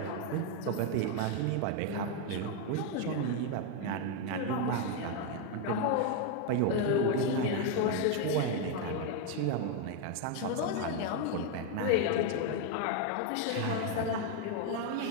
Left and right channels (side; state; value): both; different; correlation 0.01